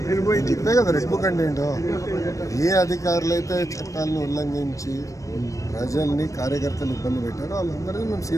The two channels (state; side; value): late; right; 0.16 ms